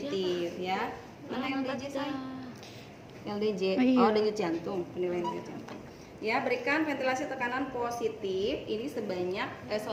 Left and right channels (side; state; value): both; identical; correlation 1.00